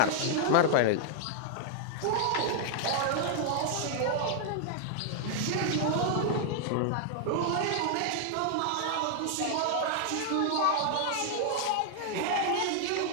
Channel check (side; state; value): both; different; correlation -0.01